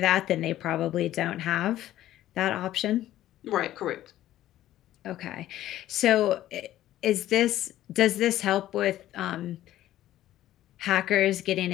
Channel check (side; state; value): right; quieter; 13.6 dB